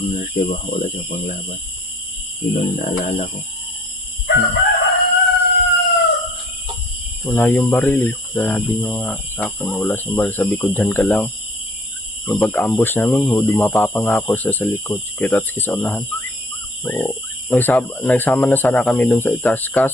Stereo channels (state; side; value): normal; both; correlation 0.54